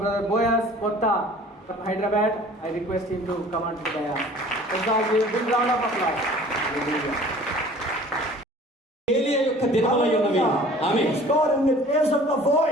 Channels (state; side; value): normal; both; correlation 0.48